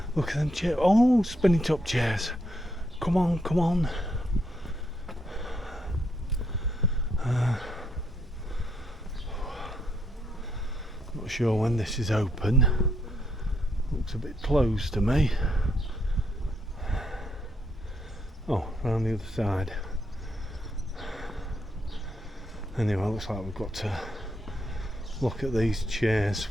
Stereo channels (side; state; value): both; normal; correlation 0.76